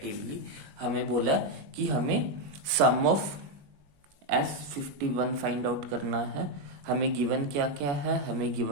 हमें बोला कि हमें सम ऑफ S51 फाइंड आउट करना है। हमें गिवन क्या क्या है, हमें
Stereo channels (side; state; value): left; late; 21 ms